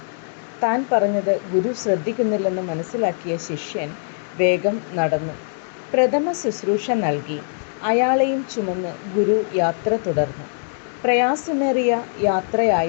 താൻ പറഞ്ഞത് ഗുരു ശ്രദ്ധിക്കുന്നില്ലെന്ന് മനസ്സിലാക്കിയ ശിഷ്യൻ വേഗം നടന്നു. പ്രഥമ ശുശ്രൂഷ നൽകി അയാളെയും ചുമന്ന് ഗുരു യാത്ര തുടർന്നു. പ്രയാസമേറിയ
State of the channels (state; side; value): silent; right; digital silence